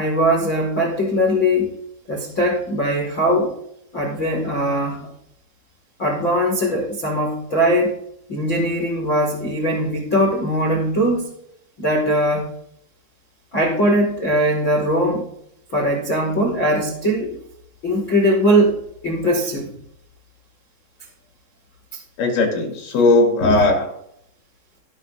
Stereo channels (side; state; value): right; late; 3.7 ms